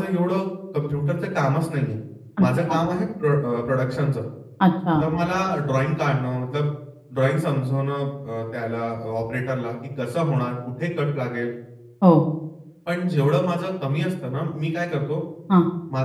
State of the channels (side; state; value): both; identical; correlation 1.00